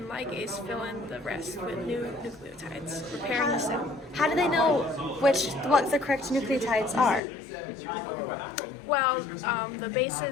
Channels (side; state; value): right; drops out; at 7.2 s